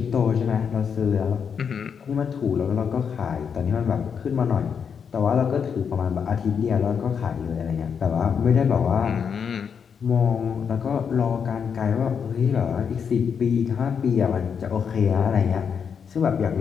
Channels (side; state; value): right; quieter; 6.9 dB